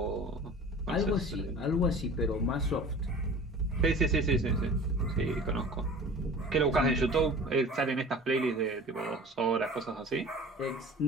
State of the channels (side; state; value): both; normal; correlation 0.41